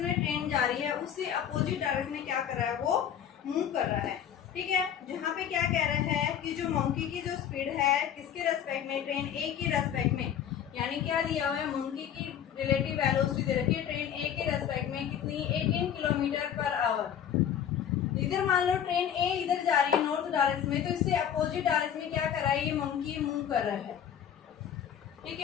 में ट्रेन जा रही है उससे अपोजिट डायरेक्शन में क्या कर रहा है, वो मूव कर रहा है, ठीक है। जहाँ पे क्या कह रहा है कि जो मंकी की जो स्पीड है किसके रेस्पेक्ट में, ट्रेन ए के रेस्पेक्ट में, यानी क्या दिया हुआ है, मंकी की रिलेटिव वेलोसिटी दे रखी है ट्रेन ए के रेस्पेक्ट में कितनी, 18 किलोमीटर पर आवर। इधर मान लो ट्रेन ए इधर जा रही है नॉर्थ डायरेक्शन में, तो इससे अपोजिट डायरेक्शन में क्या कर रहा है, ये मंकी मूव कर रहा है, ठीक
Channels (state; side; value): quieter; right; 9.3 dB